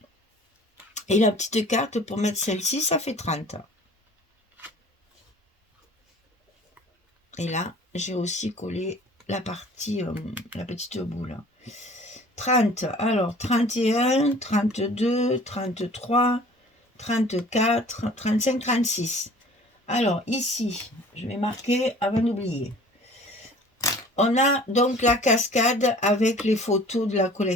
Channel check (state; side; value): normal; both; correlation 0.48